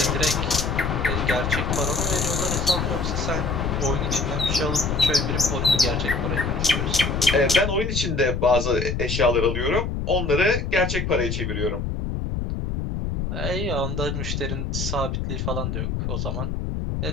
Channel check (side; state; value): left; noise; rumble, 2 dB below the sound